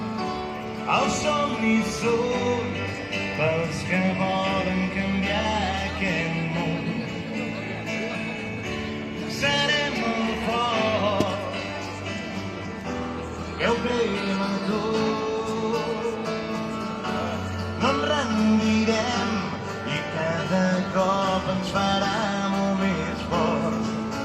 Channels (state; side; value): identical; both; correlation 1.00